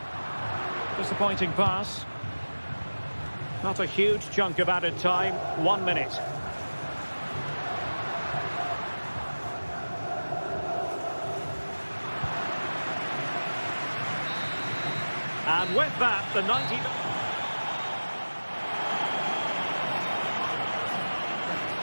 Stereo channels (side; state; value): both; inverted; correlation -1.00